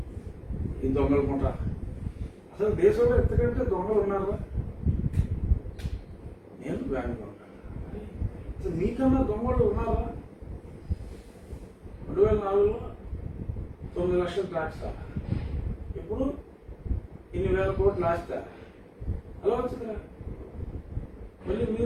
ఈ దొంగలు కొంటా. అసలు దేశంలో ఎంతకంటే దొంగలు ఉన్నారా? నేను బ్యాంకులో ఉంటాను. అసలు మీకన్నా దొంగలు ఉన్నారా? 2004లో 9 లక్షలు ట్యాక్స్ రా, ఇప్పుడు ఇన్ని వేల కోట్లు ఆస్తా. అలా వచ్చిందిరా. మళ్ళీ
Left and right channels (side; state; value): both; identical; correlation 1.00